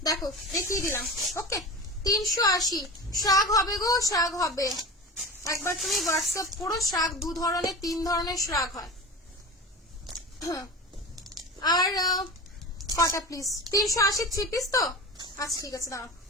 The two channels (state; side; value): normal; both; correlation 0.30